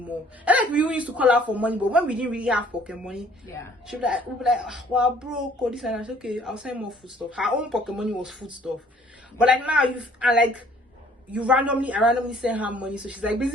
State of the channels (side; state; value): both; normal; correlation 0.58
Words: And like we used to call her for money, but when we didn't really have pocket money, we'd be like, well, broke or this, and I said, okay, I'll send more food stuff. Her own pocket money was food stuff. But like now I randomly send her money, so she's like